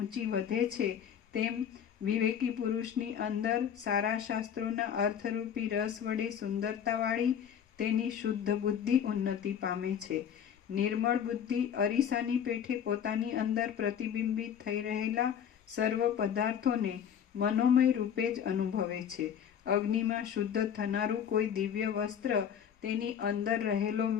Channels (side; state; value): right; quieter; 8.5 dB